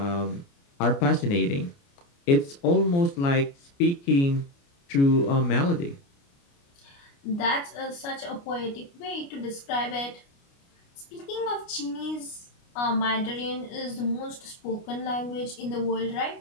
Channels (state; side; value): late; right; 29 ms